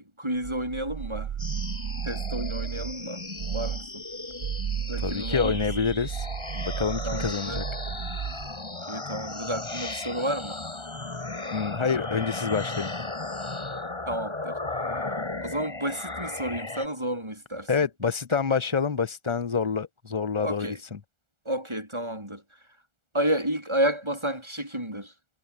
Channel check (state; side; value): late; left; 1.4 ms